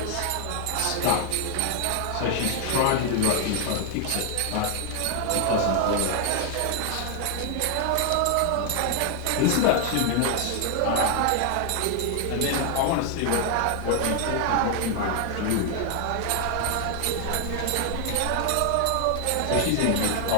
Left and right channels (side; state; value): both; different; correlation 0.00